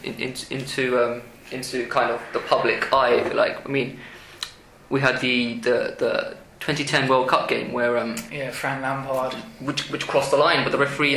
kind of the public eye, if you like. I mean, we had the 2010 World Cup game where Frank Lampard, which crossed the line, but the referee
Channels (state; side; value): identical; both; correlation 1.00